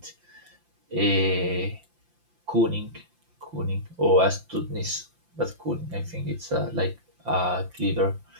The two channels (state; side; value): late; left; 5.8 ms